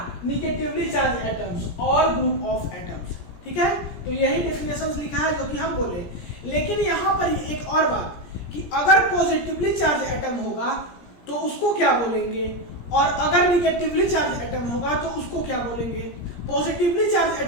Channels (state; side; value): late; right; 17 ms